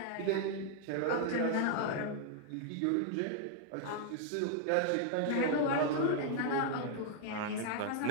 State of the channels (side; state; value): both; different; correlation 0.00